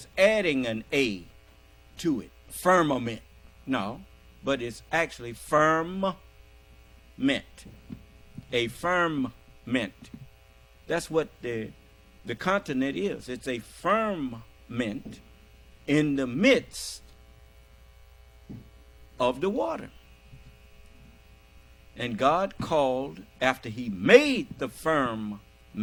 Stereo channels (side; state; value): both; identical; correlation 1.00